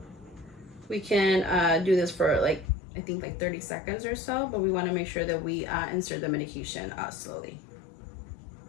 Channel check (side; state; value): right; drops out; at 2.7 s